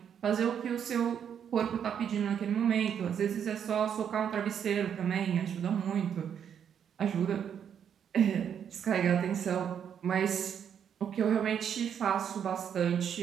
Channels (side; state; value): left; quieter; 8.3 dB